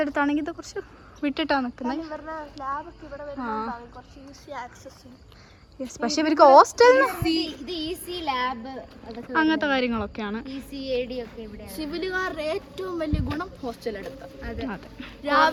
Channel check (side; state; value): both; identical; correlation 1.00